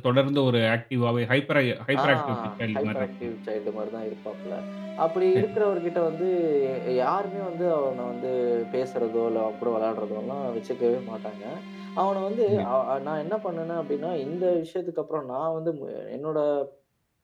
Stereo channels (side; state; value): both; identical; correlation 1.00